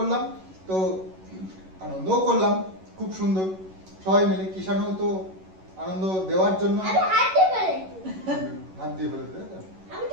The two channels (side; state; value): left; late; 11 ms